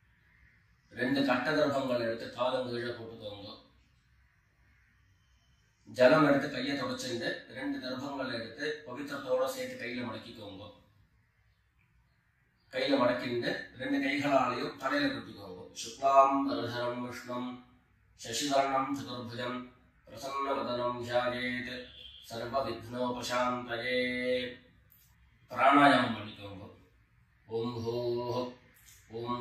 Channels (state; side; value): identical; both; correlation 1.00